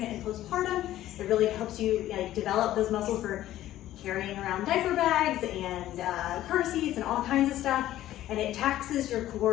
and postpartum. It really helps you develop those muscles for carrying around diaper bags and car seats and all kinds of stuff. And it taxes your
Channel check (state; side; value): quieter; right; 13.8 dB